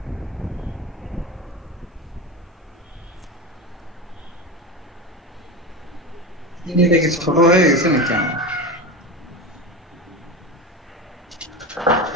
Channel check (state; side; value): normal; both; correlation 0.24